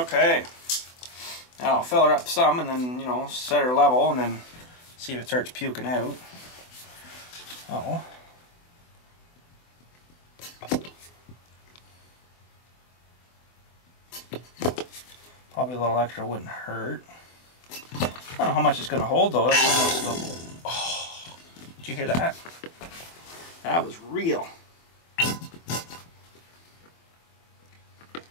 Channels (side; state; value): right; late; 24 ms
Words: Now I'll fill her up some and then, you know, set her level and then see if it starts puking out. Oh. Probably a little extra wouldn't hurt. I don't know how much it's going to hold though. That's almost oh, did you hear that? That was real.